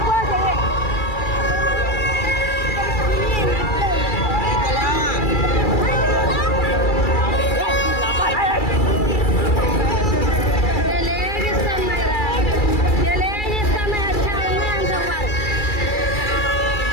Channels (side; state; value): right; late; 2.3 ms